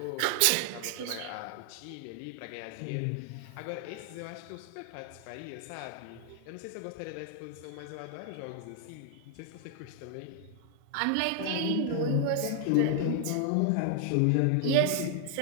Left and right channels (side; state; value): both; different; correlation 0.00